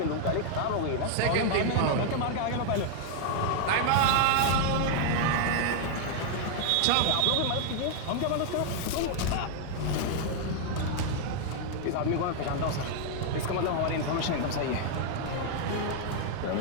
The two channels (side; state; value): both; different; correlation 0.00